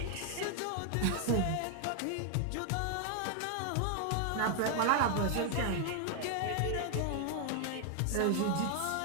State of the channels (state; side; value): different; both; correlation 0.00